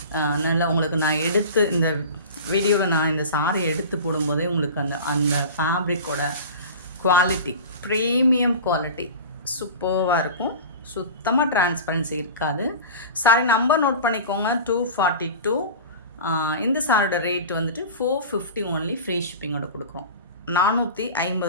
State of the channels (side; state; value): both; inverted; correlation -0.34